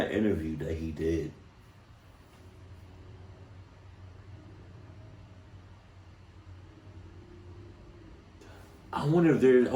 interview that he did, I wonder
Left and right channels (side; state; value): both; identical; correlation 1.00